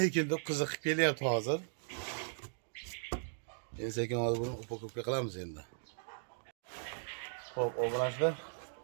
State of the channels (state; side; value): silent; left; digital silence